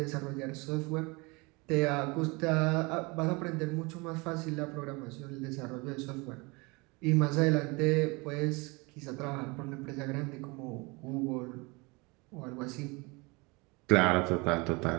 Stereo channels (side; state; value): left; quieter; 26.8 dB